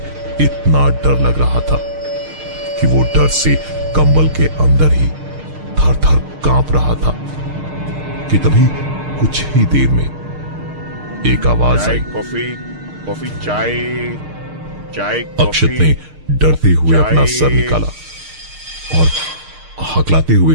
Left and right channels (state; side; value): late; left; 6.5 ms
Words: इतना डर लग रहा था कि वो डर से कंबल के अंदर ही थर थर कांप रहा था कि तभी कुछ ही देर में एक आवाज आई। कॉफी, चाय। अक्षत ने डरते हुए अपना सर निकाला और हकलाते हुए